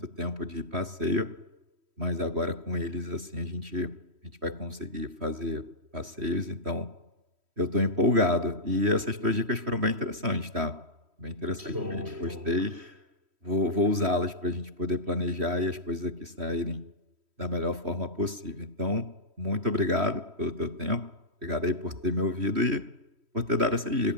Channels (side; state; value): left; late; 3.1 ms